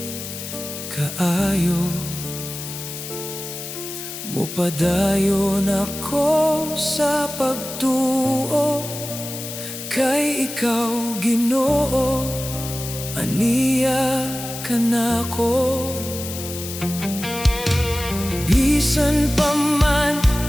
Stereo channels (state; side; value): noise; left; hiss, 9 dB below the sound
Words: kaayo. Mupadayon ako sa pagtuo kay ikaw, Ginoo, aniya ka nako. Bisan pa man